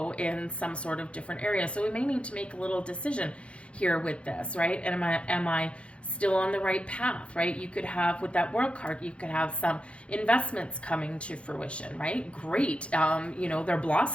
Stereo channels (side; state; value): right; late; 0.060 ms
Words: in some sort of different area. So we may need to make a little decision here with this, right? And am I still on the right path, right? You could have, with that World card, you could have some investments coming to fruition, right? Great. They're